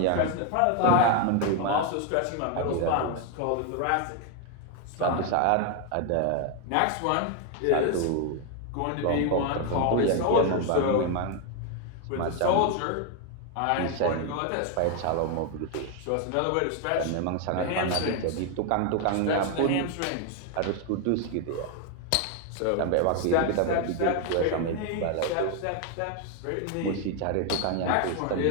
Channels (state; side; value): different; both; correlation 0.01